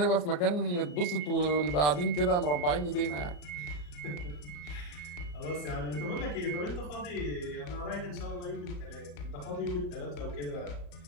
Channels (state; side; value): late; right; 34 ms